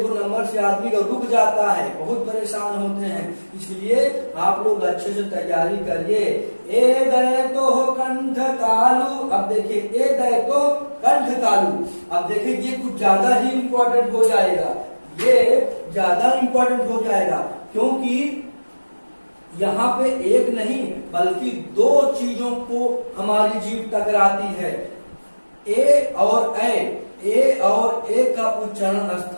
नंबर से आदमी का रुक जाता है, बहुत परेशान होते हैं, इसलिए आप लोग अच्छे से तैयारी करिए। ए दय तो कंठ तालु, अब देखिए ए दय तो कंठ तालु, अब देखिए ये कुछ ज्यादा ही इम्पोर्टेंट हो जाएगा, ये ज्यादा इम्पोर्टेंट हो जाएगा, क्योंकि यहाँ पे एक नहीं बल्कि 2 चीजों को हमारी जीभ टकराती है, ए और ए का उच्चारण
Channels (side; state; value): both; inverted; correlation -1.00